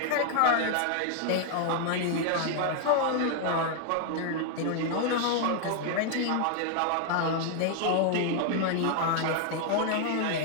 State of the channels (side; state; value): both; different; correlation 0.00